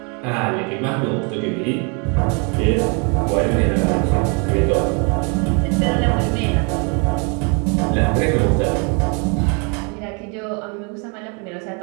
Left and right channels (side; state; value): left; quieter; 34.7 dB